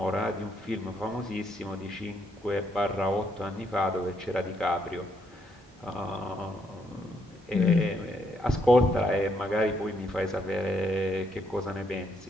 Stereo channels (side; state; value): both; normal; correlation 0.74